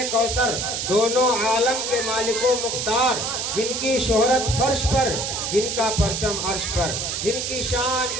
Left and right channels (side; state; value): right; noise; hiss, 2 dB below the sound